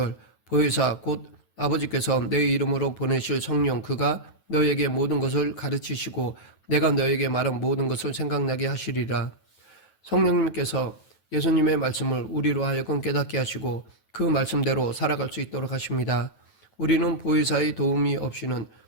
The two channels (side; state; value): right; late; 9.2 ms